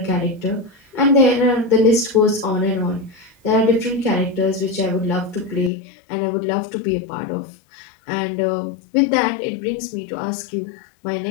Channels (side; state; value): right; drops out; at 5.7 s